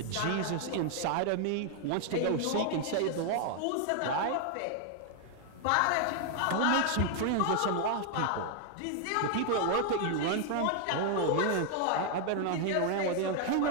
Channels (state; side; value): different; both; correlation 0.00